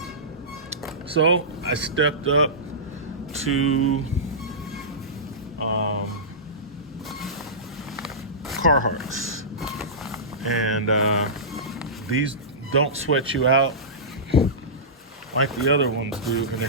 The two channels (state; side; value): normal; both; correlation -0.19